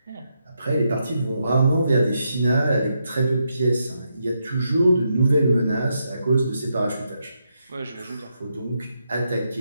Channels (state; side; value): inverted; both; correlation -0.82